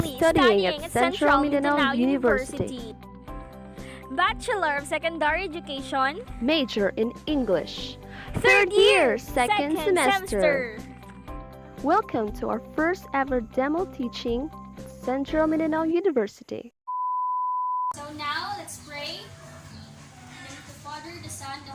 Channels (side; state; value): both; identical; correlation 1.00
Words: studying at Central Mindanao University. Bachelor of Secondary Education, Major in English. third year, second semester. Welcome to our first ever demo teaching at Central Mindanao University. So now, let's pray. In the name of the Father, the Son, the